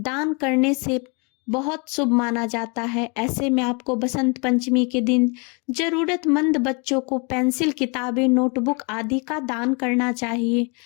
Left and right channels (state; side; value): quieter; right; 32.6 dB